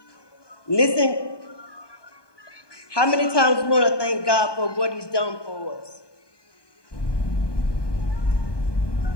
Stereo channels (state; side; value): late; right; 1.2 ms